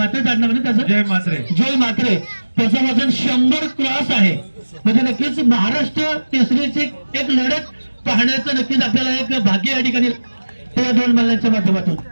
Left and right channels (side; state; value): both; inverted; correlation -1.00